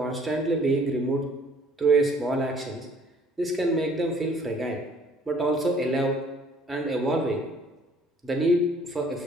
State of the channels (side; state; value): both; normal; correlation 0.58